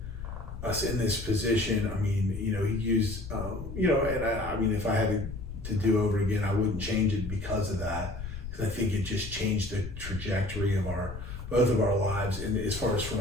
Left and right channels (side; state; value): left; noise; rumble, 9 dB below the sound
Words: us in this position. I mean, he used and I mean, if I had to do over again, I wouldn't change it because of that, because I think it just changed the trajectory of both of our lives, and as far as